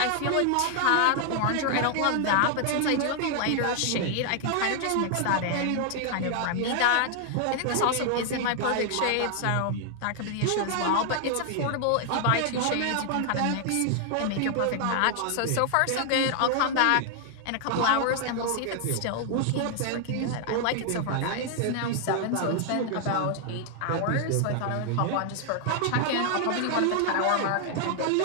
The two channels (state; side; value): different; both; correlation 0.00